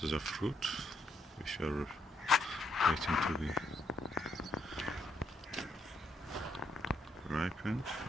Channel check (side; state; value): both; normal; correlation 0.77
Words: of fruit which are waiting to be ripened.